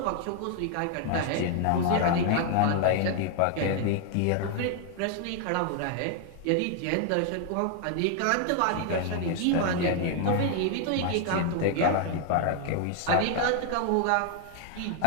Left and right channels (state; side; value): different; both; correlation 0.00